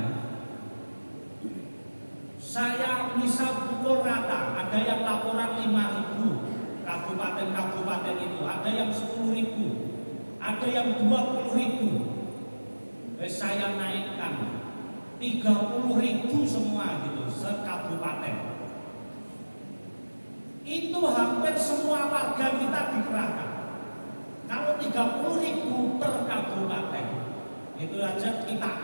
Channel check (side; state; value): both; inverted; correlation -1.00